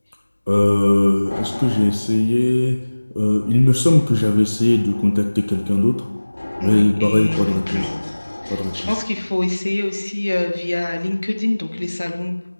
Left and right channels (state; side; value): inverted; both; correlation -1.00